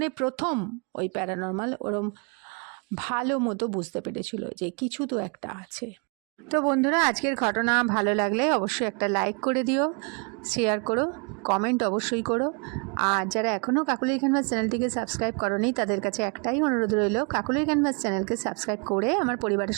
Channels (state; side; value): quieter; left; 35.5 dB